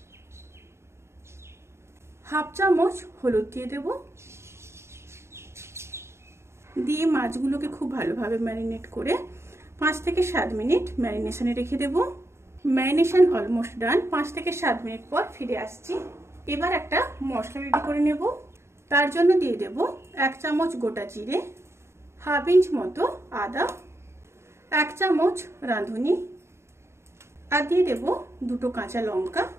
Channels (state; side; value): late; left; 0.13 ms